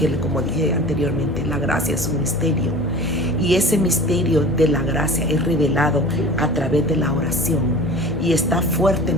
como dije anteriormente, la gracia es un misterio, y ese misterio de la gracia es revelado a través de la oración y está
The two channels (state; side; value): normal; both; correlation 0.39